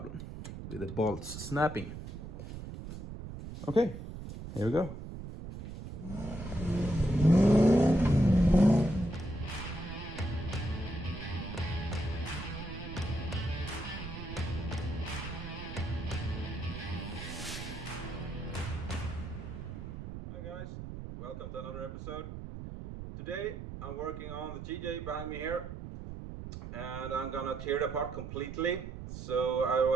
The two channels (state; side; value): noise; right; rumble, 9 dB below the sound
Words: with the bolts snapping. Okay, here we go. Hi guys, welcome to another episode. Today I'm working on the TJ behind me here, and I'm gonna tear it apart completely. So I